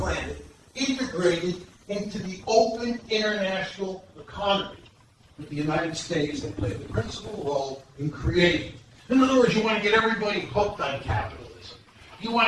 integrated into the open international economy that the United States had played the principal role in creating. In other words, you want to get everybody hooked on capitalism. You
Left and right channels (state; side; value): identical; both; correlation 1.00